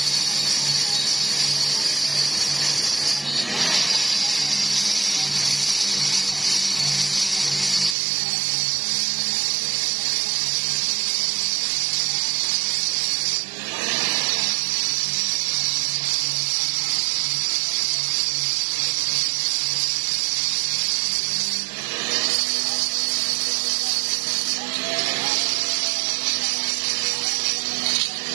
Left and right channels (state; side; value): drops out; left; at 8.0 s